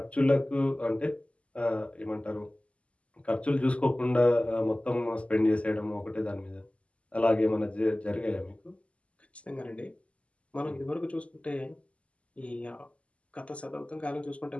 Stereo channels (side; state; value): right; late; 0.061 ms